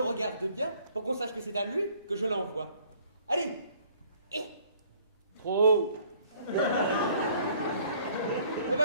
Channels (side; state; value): both; inverted; correlation -0.59